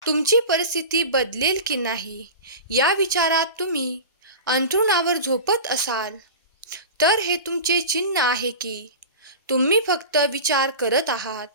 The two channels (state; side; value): inverted; both; correlation -0.30